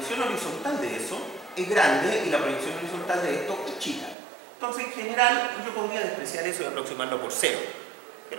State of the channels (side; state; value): left; drops out; at 4.2 s